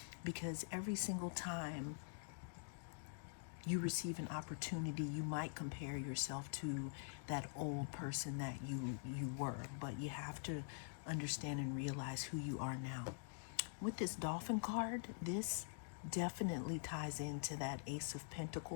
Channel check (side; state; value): right; silent; digital silence